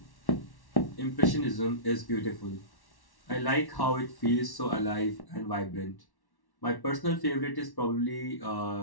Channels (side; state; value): right; late; 1.1 ms